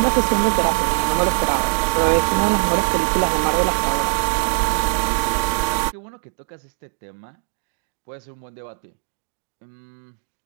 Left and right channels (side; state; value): left; silent; digital silence